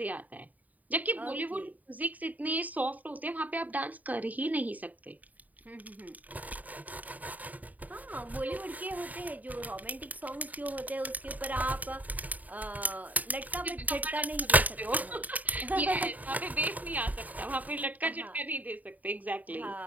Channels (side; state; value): left; late; 0.077 ms